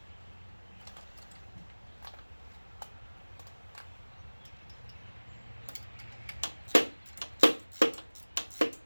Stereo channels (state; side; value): inverted; both; correlation -1.00